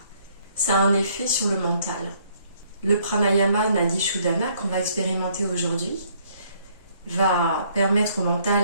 ça a un effet sur le mental. Le pranayama Nadi Shodhana qu'on va expérimenter aujourd'hui va permettre au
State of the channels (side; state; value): both; inverted; correlation -0.65